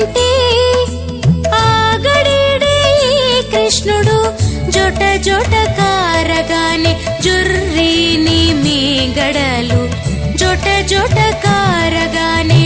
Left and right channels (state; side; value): identical; both; correlation 1.00